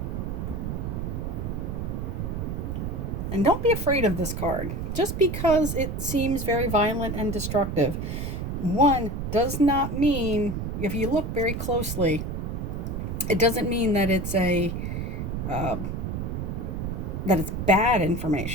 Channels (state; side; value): noise; right; rumble, 3 dB below the sound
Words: And don't be afraid of this card. Just because it seems very violent and destructive, one does not mean, if you look very closely, it doesn't mean that it's that it's bad